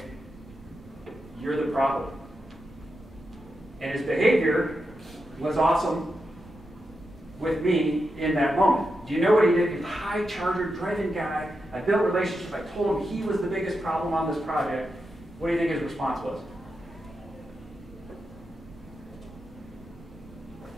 you're the problem. And his behavior was awesome with me in that moment. Do you know what he did? He's a high charger, driven guy. I built relationships. I told him he was the biggest problem on this project. What do you think his response was?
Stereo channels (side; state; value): both; normal; correlation 0.87